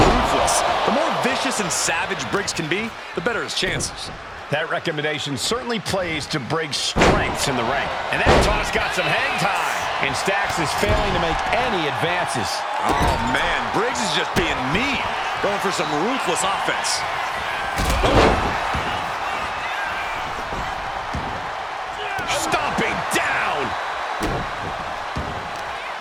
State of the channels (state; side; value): identical; both; correlation 1.00